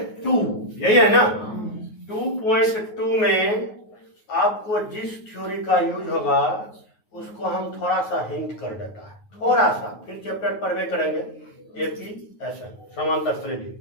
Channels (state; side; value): late; right; 9.4 ms